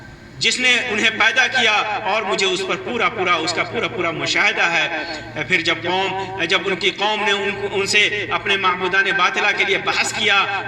جس نے انہیں پیدا کیا اور مجھے اس پر اس کا پورا مشاہدہ ہے۔ پھر جب ان کی قوم نے ان سے اپنے معبودان باطلہ کے لیے بحث کیا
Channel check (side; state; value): both; identical; correlation 1.00